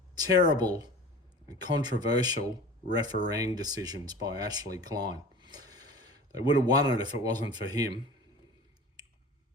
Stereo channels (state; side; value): normal; both; correlation 0.38